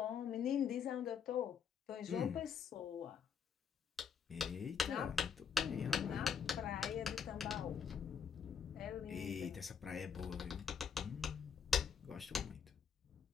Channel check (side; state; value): right; quieter; 6.9 dB